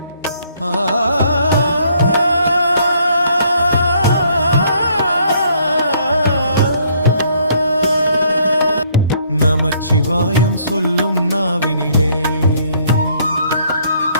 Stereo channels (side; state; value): both; inverted; correlation -0.65